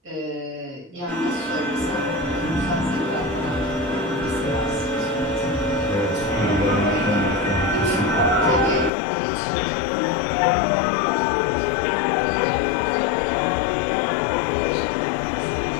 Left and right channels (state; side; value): drops out; right; at 8.9 s